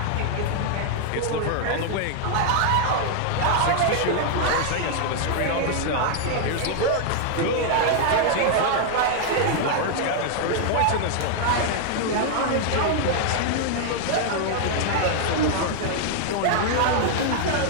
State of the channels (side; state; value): both; different; correlation 0.00